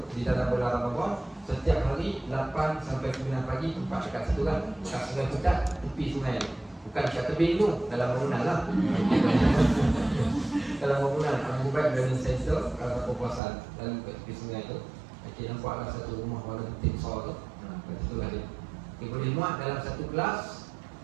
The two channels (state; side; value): drops out; left; at 13.4 s